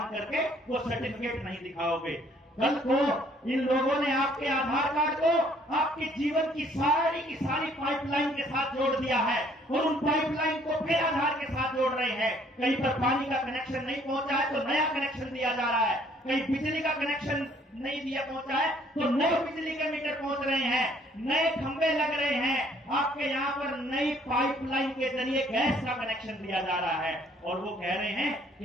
करके वो सर्टिफिकेट नहीं दिखाओगे। कल को इन लोगों ने आपके आधार कार्ड को आपके जीवन की सारी पाइपलाइन के साथ जोड़ दिया है और उन पाइपलाइन को फिर आधार के साथ जोड़ रहे हैं। कहीं पर पानी का कनेक्शन नहीं पहुंचा है तो नया कनेक्शन दिया जा रहा है, कहीं बिजली का कनेक्शन नहीं दिया पहुंचा है तो नए बिजली के मीटर पहुंच रहे हैं, नए खंभे लग रहे हैं, आपके यहाँ पर नई पाइपलाइन के जरिए गैस का कनेक्शन दिया जा रहा है और वो कह रहे हैं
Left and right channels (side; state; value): both; normal; correlation 0.61